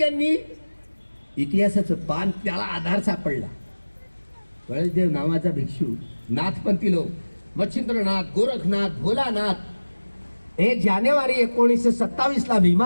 यांनी इतिहासाचं पान, त्याला आधार सापडला. कळसदेव नावाचा भिक्षू, नाथपंथी लोक, मच्छिंद्रनाथ, गोरखनाथ, भोलानाथ, 1 जानेवारी 1927 ला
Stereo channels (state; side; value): inverted; both; correlation -1.00